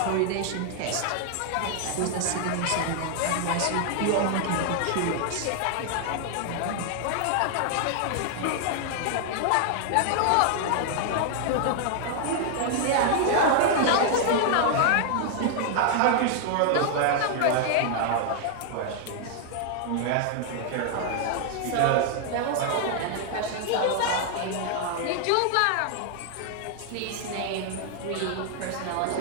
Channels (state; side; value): different; both; correlation 0.00